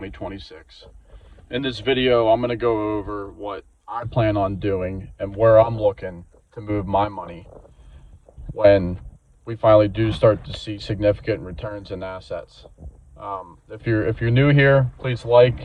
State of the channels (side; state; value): both; identical; correlation 1.00